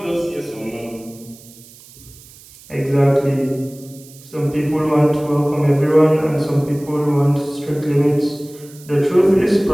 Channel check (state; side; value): noise; right; hiss, 22 dB below the sound